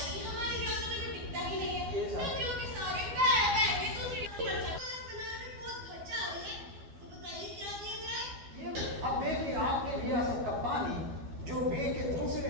हमारी रियासत में तो टिकता ही नहीं है। नदियों के सारे बह बह के दूसरी बनाने में बहुत खर्चा आ रही है। तो बताइए क्या किया जाए? अब देखिए आपके रियासत का पानी जो बे के दूसरी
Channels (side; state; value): left; late; 12 ms